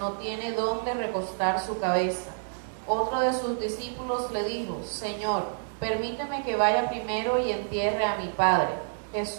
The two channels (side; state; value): left; silent; digital silence